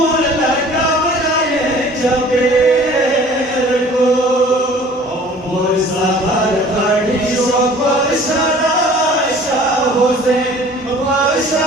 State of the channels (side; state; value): both; normal; correlation 0.49